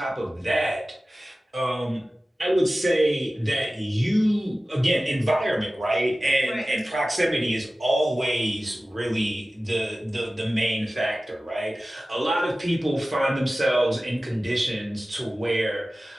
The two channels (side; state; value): both; normal; correlation 0.96